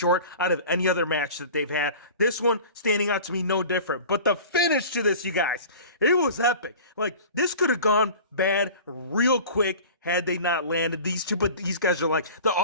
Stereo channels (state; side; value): inverted; both; correlation -0.39